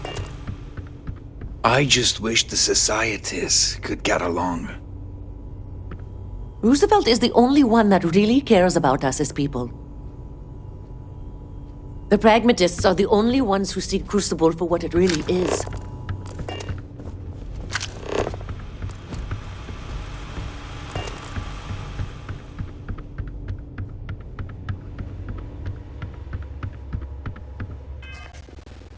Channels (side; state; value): both; identical; correlation 1.00